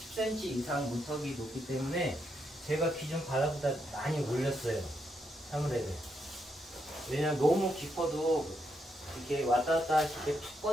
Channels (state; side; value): normal; both; correlation 0.80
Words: 10cm 이상 문턱이 높기 때문에 제가 기준 바닥보다 많이 올렸어요. 사무대를. 왜냐면 너무 깊어도 이렇게 왔다 갔다 하실 때 푹